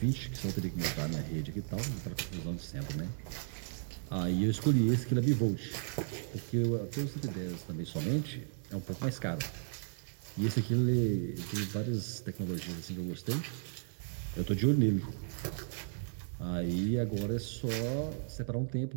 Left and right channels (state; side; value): silent; left; 54 dB below the other